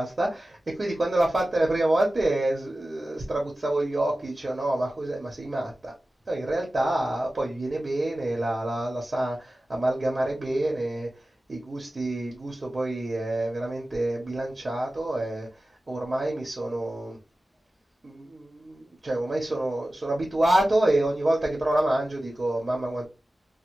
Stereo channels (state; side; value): normal; both; correlation 0.96